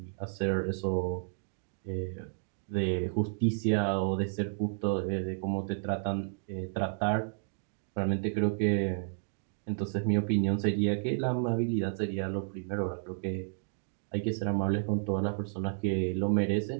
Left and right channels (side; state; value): left; silent; digital silence